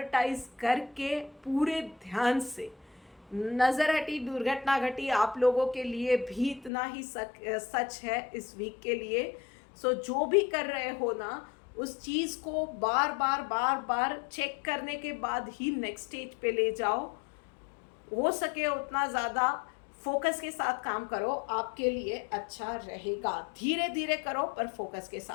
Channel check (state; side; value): drops out; right; at 6.7 s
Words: करके पूरे ध्यान से। नज़र हटी दुर्घटना घटी आप लोगों के लिए भी इतना ही सच है इस वीक के लिए। सो जो भी कर रहे हो ना, उस चीज़ को बार बार चेक करने के बाद ही नेक्स्ट स्टेज पे ले जाओ। हो सके उतना ज़्यादा फोकस के साथ काम करो, आपके लिए अच्छा रहेगा। धीरे धीरे करो पर फोकस के